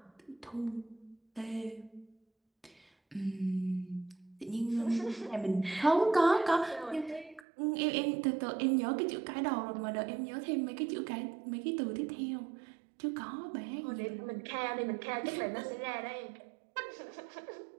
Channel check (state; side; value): drops out; left; at 7.4 s